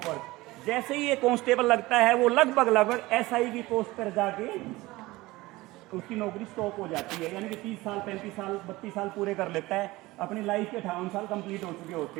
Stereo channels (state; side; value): quieter; left; 19.9 dB